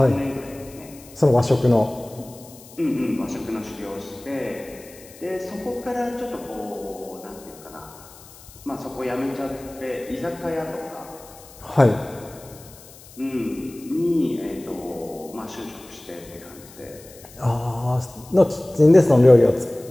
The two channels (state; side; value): noise; left; hiss, 21 dB below the sound